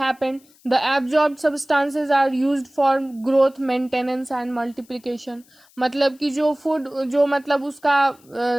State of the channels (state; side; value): noise; left; hiss, 30 dB below the sound